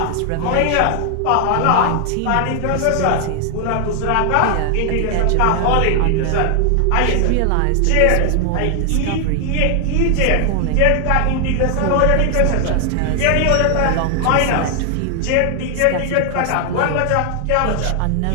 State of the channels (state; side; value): different; both; correlation 0.00